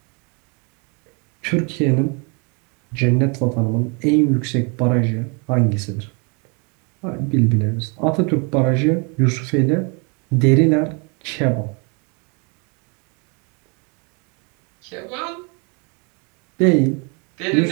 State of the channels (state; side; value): quieter; left; 34.0 dB